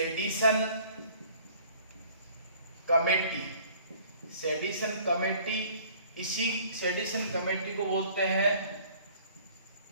कमेटी। सेडिशन कमेटी, इसी सेडिशन कमेटी को बोलते हैं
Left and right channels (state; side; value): inverted; both; correlation -0.54